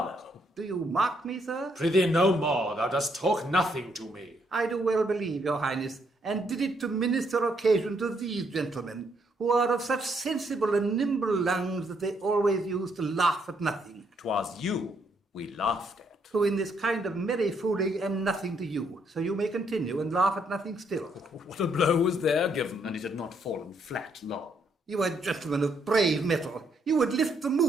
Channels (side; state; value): both; normal; correlation 0.73